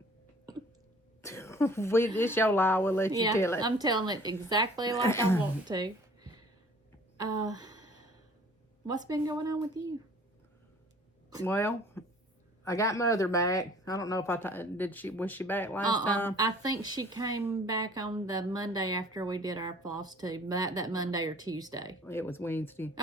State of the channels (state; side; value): normal; both; correlation 0.52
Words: It's your lie, we'll let you tell it. I'm telling it exactly like I want to. What's been going on with you? Well, I got Mother back. I don't know if was she back last time? I think she came back on the Monday after we did our Flosstube. That Monday or Tuesday. It was Wednesday.